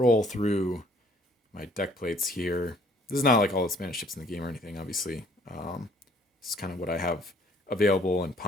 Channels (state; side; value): normal; both; correlation 0.59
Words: through my deck plates here. This is not like all the Spanish ships in the game or anything, obviously. This is kind of what I have available and